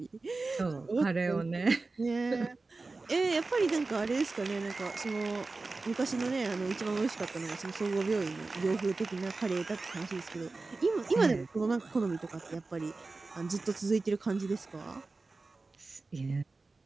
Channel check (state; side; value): quieter; left; 3.6 dB